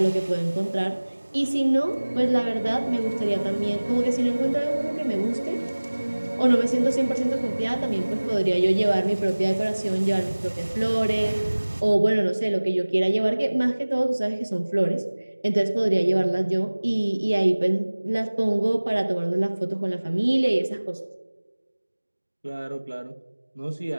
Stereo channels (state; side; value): inverted; both; correlation -1.00